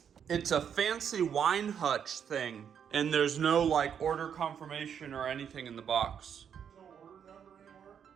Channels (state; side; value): quieter; left; 8.0 dB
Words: It's a fancy wine hutch thing, and there's no like order confirmation or anything in the box. No order number anymore?